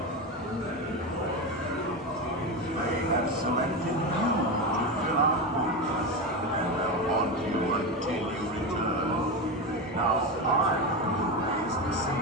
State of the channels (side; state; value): both; normal; correlation 0.17